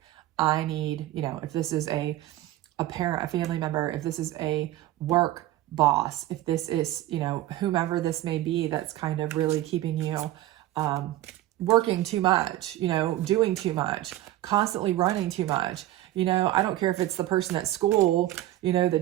I need, if this is a parent, a family member, if this is a work boss, if this is, whomever this may be, that's kind of really keeping you working too much, doing too much, constantly running too much. I don't care if it's the person at school,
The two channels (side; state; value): left; quieter; 14.9 dB